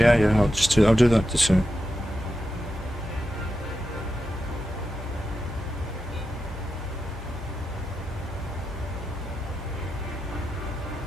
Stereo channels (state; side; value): normal; both; correlation 0.89